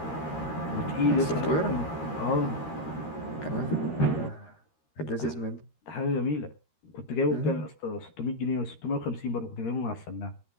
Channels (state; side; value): late; right; 13 ms